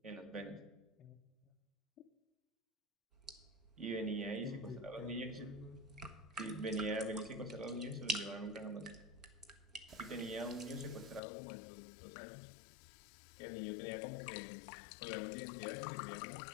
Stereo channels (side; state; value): right; drops out; at 11.2 s